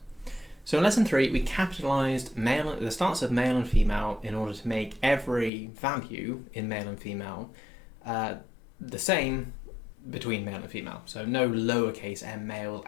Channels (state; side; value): drops out; right; at 5.5 s